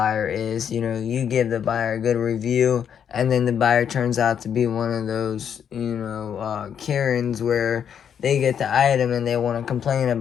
is. You give the buyer a good review, and then the buyer turns out to be one of those, Karens where they get the item and they want to complain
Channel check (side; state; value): right; quieter; 8.3 dB